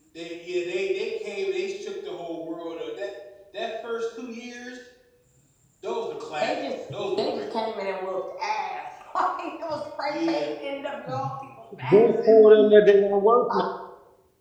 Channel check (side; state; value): both; identical; correlation 1.00